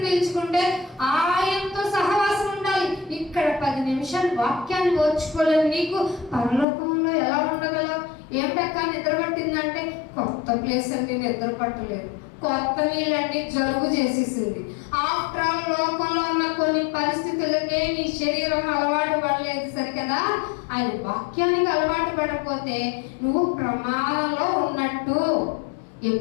పీల్చుకుంటే ఆయనతో సహవాసం ఉండాలి. ఇక్కడ 10 నిమిషాలు వాక్యాన్ని ఓర్చుకోలేదు. నీకు పరలోకంలో ఎలా ఉండగలవు? ఏమిటక్క నిద్ర పట్టిందంటే, కొత్త ప్లేస్ అండి, నిద్ర పట్టలేదు. కొత్త నీళ్ళండి, జలుబు చేసేసింది. ఆఫ్టర్ ఆల్ లోకంలో ఉన్న కొన్ని పరిస్థితులకే నీ శరీరం అలవాటు పడలేదు సరికదా. ఆయన వాక్యానికి అలవాటు పడకపోతే నువ్వు ప్రమాదంలో ఉన్నట్టు.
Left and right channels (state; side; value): drops out; right; at 6.7 s